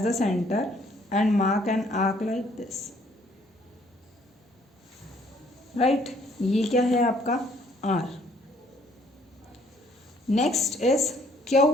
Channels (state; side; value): normal; both; correlation 0.63